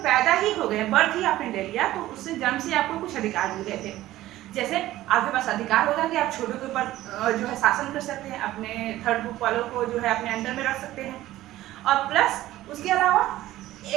पैदा ही हो गए, बर्थ ही आपने ले लिया, तो उससे जन्म से आपको कुछ अधिकार मिल गए थे। जैसे आपके पास अधिकार होगा कि आप छोटों के ऊपर जो है शासन कर सकते हैं, अपने थर्ड ग्रुप वालों को जो है अपने अंडर में रख सकते हैं। और प्लस उसके अलावा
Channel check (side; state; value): left; quieter; 15.3 dB